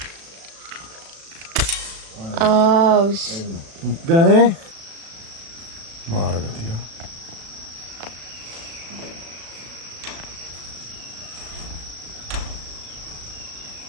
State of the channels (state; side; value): late; left; 36 ms